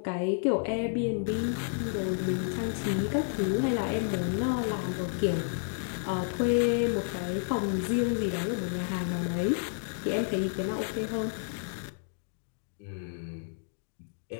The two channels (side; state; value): right; silent; digital silence